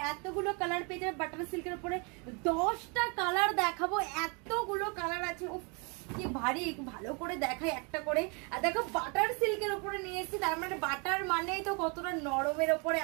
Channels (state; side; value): quieter; left; 32.7 dB